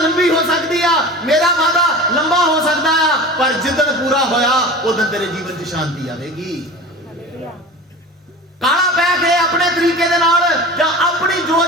ਹੋ ਸਕਦੀ ਆ, ਮੇਰਾ ਵਾਦਾ ਲੰਬਾ ਹੋ ਸਕਦਾ ਆ, ਪਰ ਜਿੱਦਣ ਪੂਰਾ ਹੋਇਆ ਉਦੋਂ ਤੇਰੇ ਜੀਵਨ 'ਚ ਸ਼ਾਂਤੀ ਆਵੇਗੀ। ਕਾਲਾ ਪੈ ਕੇ ਆਪਣੇ ਤਰੀਕੇ ਦੇ ਨਾਲ ਜਾਂ ਆਪਣੀ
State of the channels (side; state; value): both; normal; correlation 0.35